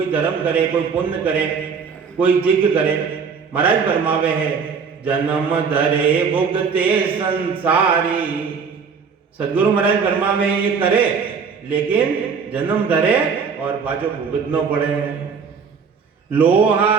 धर्म करे, कोई पुण्य करे, कोई जिग करे। महाराज फरमावे है, जन्म धरे भुगते संसारी। सदगुरु महाराज फरमावे ये करे, लेकिन जन्म धरे और बाजो भुगतना पड़े। लोहा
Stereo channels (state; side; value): quieter; left; 5.9 dB